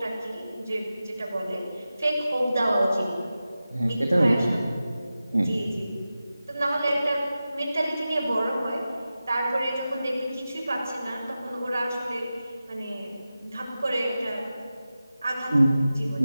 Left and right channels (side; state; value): both; inverted; correlation -0.94